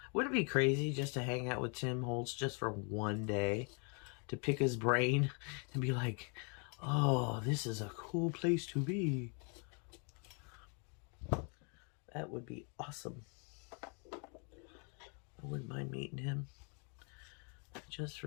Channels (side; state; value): right; quieter; 37.1 dB